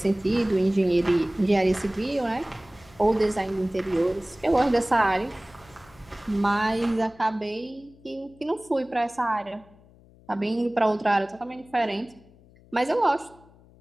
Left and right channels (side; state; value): left; noise; hum, 26 dB below the sound